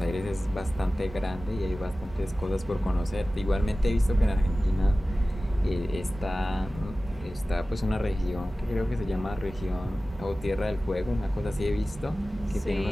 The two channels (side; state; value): both; normal; correlation 0.96